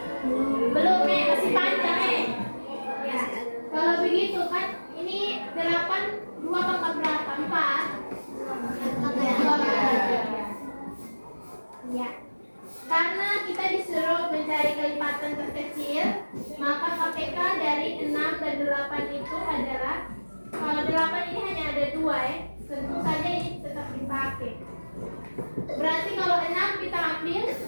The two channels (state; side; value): inverted; both; correlation -1.00